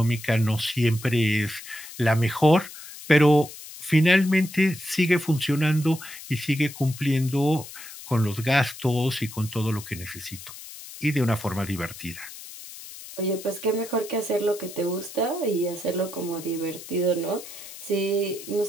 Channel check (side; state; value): left; noise; hiss, 14 dB below the sound